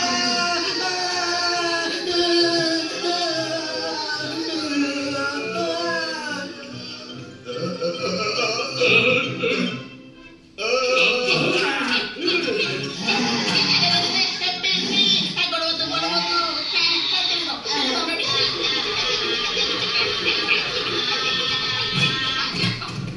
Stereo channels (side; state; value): both; identical; correlation 1.00